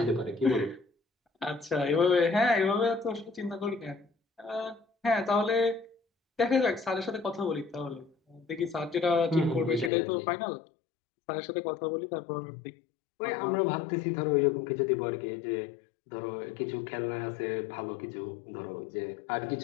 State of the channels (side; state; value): right; drops out; at 9.9 s